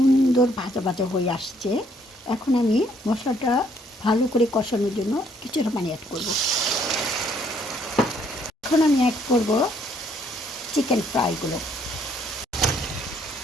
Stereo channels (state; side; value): normal; both; correlation 0.66